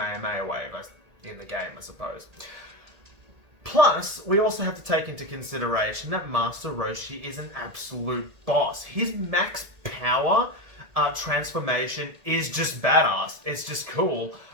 Wave in the game, I suppose. Plus, we also have to take into consideration that Master Roshi is an absolute boss. His max power transformation is just badass. It's just cool.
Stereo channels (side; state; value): left; late; 1.7 ms